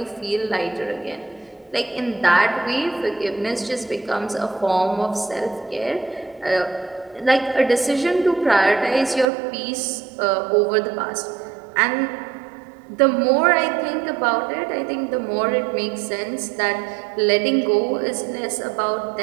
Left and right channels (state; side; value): drops out; left; at 9.2 s